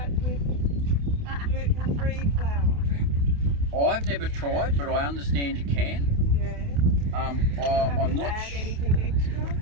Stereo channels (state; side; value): late; left; 28 ms